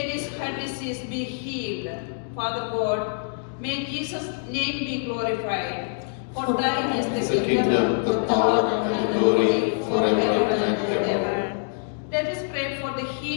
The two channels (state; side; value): silent; right; 62 dB below the other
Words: heart disease be healed. Father God, may Jesus' name be glorified. For thine is the kingdom, the power, and the glory forever and ever. Let us pray for the